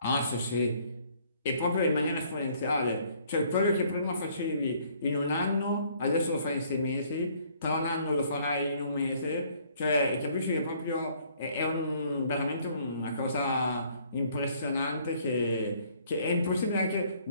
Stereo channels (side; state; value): both; inverted; correlation -0.62